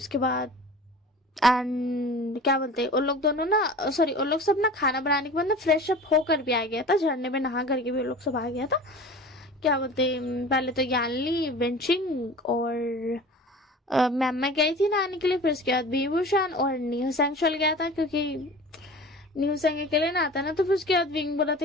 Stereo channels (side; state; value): both; normal; correlation 0.39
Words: बाद एंड क्या बोलते हैं, उन लोग दोनों ना, सॉरी, उन लोग सब ना खाना बनाने के बाद ना फ्रेश अप होकर भी आ गया था, झरने में नहा करके भी उन लोग सब आ गया था। क्या बोलते हैं, पहले तो यानली वेंचिंग और मैम गई थी नहाने के लिए, फिर उसके बाद बीबूशान और न्यू सैंग चल गया था, क्योंकि न्यू सैंग अकेले नहाता ना, तो फिर उसके बाद विंग बोला था